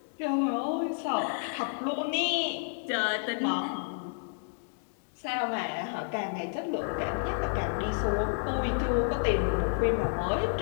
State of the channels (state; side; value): silent; right; digital silence